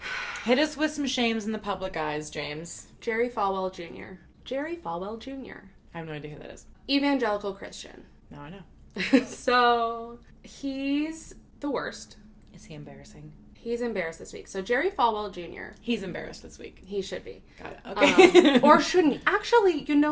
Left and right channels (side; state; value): both; identical; correlation 1.00